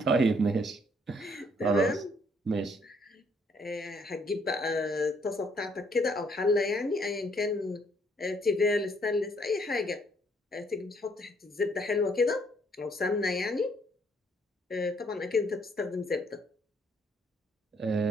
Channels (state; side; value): normal; both; correlation 0.67